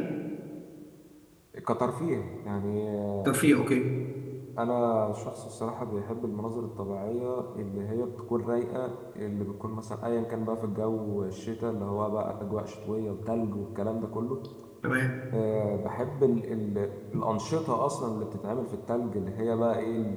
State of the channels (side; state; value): both; identical; correlation 1.00